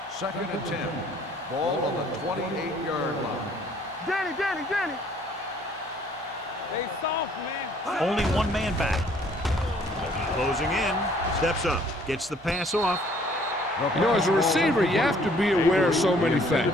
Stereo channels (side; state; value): both; normal; correlation 0.59